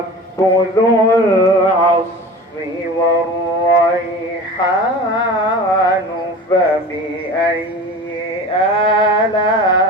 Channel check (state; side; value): normal; both; correlation 0.36